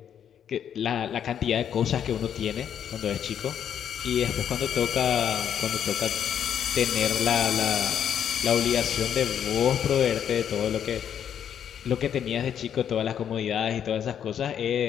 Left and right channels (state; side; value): quieter; right; 9.0 dB